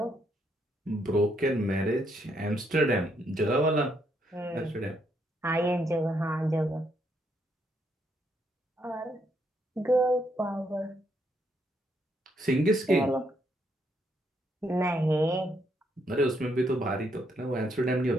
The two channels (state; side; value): normal; both; correlation 0.75